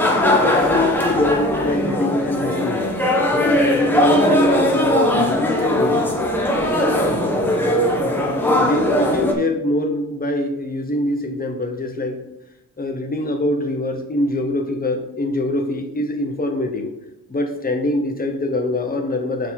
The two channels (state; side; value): normal; both; correlation 0.44